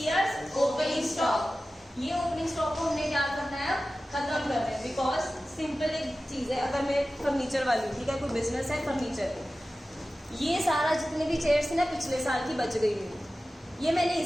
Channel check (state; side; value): normal; both; correlation 0.95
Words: opening stock. ये ओपनिंग स्टॉक को हमने क्या करना है, खत्म करना है, बिकॉज सिंपल एक चीज है, अगर मैं फर्नीचर वाली, ठीक है, कोई बिजनेस है फर्नीचर, ये सारा जितने भी चेयर्स थी ना पिछले साल की बच गई हुई, ये मैंने